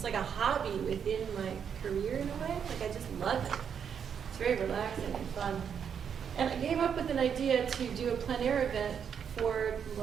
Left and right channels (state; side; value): quieter; left; 7.6 dB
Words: hobby within my career in a way. Like I just love it. It's very relaxing and fun. And I came up with an idea to do a plein air event for